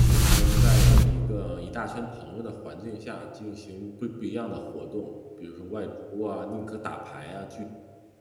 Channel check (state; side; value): identical; both; correlation 1.00